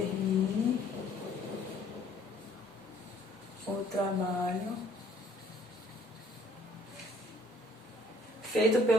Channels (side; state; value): both; normal; correlation 0.58